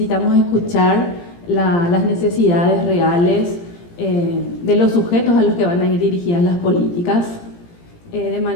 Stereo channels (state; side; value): late; right; 17 ms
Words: escuchar las necesidades reales de los sujetos a los que van a ir dirigidas las políticas de